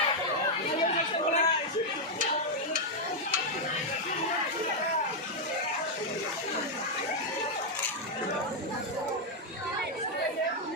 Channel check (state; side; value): normal; both; correlation -0.01